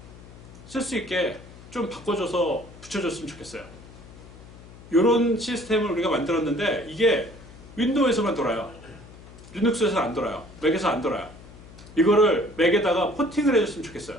쓸 수 있게 좀 바꿔줘서 붙여줬으면 좋겠어요. 이런 시스템을 우리가 만들었는데 이게 윈도우에서만 돌아요. 리눅스에서는 안 돌아요. 맥에서 안 돌아요. 이거를 맥에다가 포팅을 해줬으면 좋겠어요.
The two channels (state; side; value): noise; left; hum, 19 dB below the sound